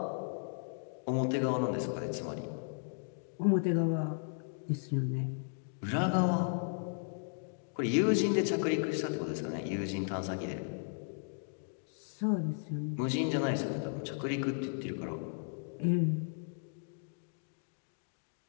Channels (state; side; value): silent; right; digital silence